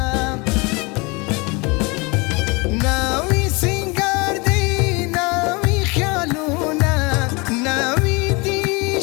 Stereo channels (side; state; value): right; quieter; 27.3 dB